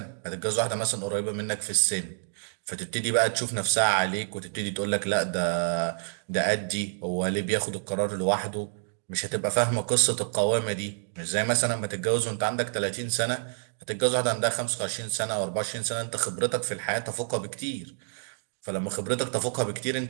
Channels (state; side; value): silent; left; digital silence